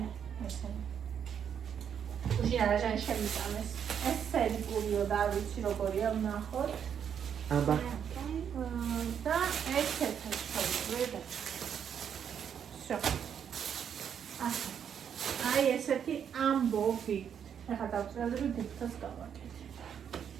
ესენი. უშინ არაჟანი შევიტანეს. ეს სერიკულიო და არ ვიცი როგორია ვნახოთ. აბა. და ესეთი შევიდე. всё. აი ესეთი ამბობი. ეხლა დავწერდი დიფტოს გავაკეთე.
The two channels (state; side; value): quieter; left; 8.2 dB